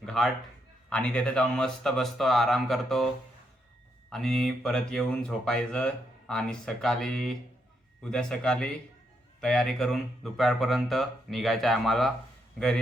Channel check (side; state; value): both; normal; correlation 0.79